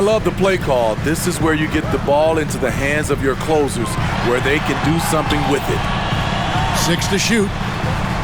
the play call. This is where you get the ball into the hands of your closers, where they can do something with it. 6 to shoot.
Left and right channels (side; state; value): both; identical; correlation 1.00